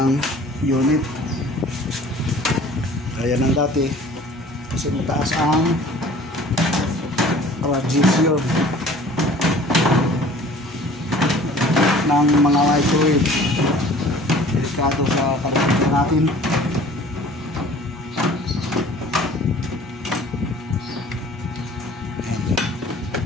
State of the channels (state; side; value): normal; both; correlation 0.48